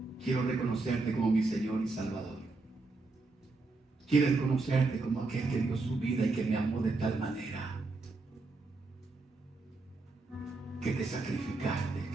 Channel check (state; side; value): quieter; left; 3.5 dB